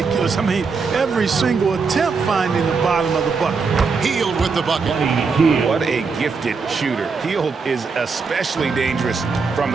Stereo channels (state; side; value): quieter; left; 4.9 dB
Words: I mean, every single attempt finding the bottom of the bucket. Hield with the bucket. What a gifted shooter. Hield is especially dangerous from